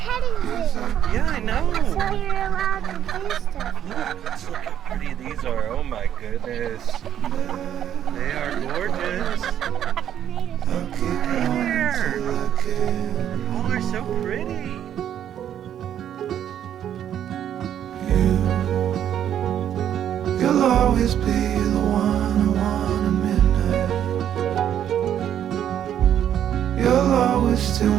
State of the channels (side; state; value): left; quieter; 10.1 dB